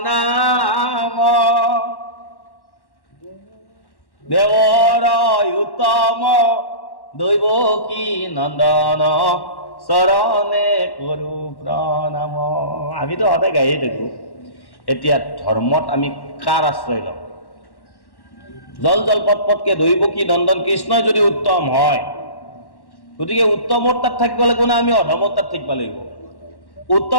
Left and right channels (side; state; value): right; late; 1.1 ms